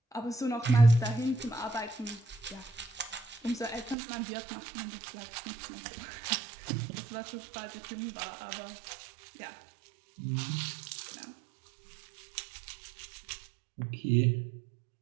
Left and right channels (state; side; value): drops out; left; at 4.0 s